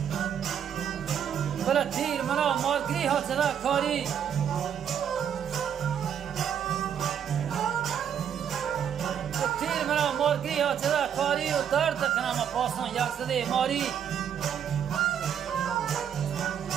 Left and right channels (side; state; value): left; quieter; 8.7 dB